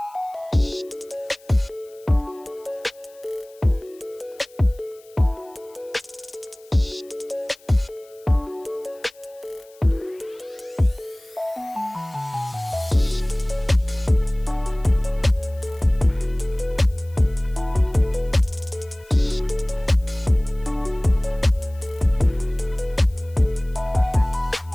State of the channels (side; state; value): left; noise; hiss, 28 dB below the sound